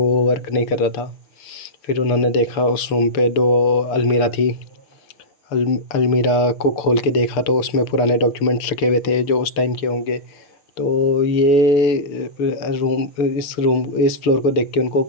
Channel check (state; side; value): late; right; 6.8 ms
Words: वर्क नहीं कर रहा था। फिर उन्होंने देखा उस रूम पे 2 अलमीरा थी। अलमीरा को खोल के देखा तो उसमें पुराने डॉक्यूमेंट्स रखे हुए थे जो उस टाइम के होंगे। तो ये इस फ्लोर को देख के उनको